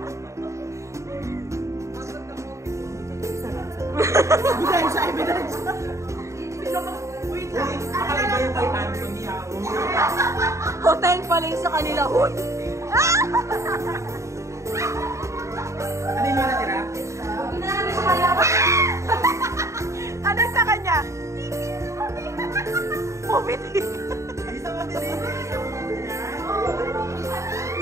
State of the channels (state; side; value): late; left; 0.14 ms